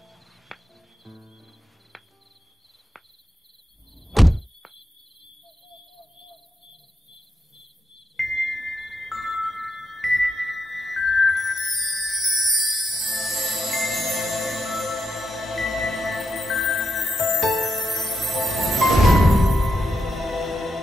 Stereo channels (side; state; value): both; normal; correlation 0.83